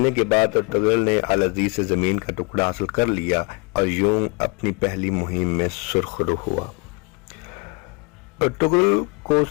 کے بعد ارطغرل نے العزیز سے زمین کا ٹکڑا حاصل کر لیا اور یوں اپنی پہلی مہم میں سرخرو ہوا۔ ارطغرل کو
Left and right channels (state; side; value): quieter; right; 29.8 dB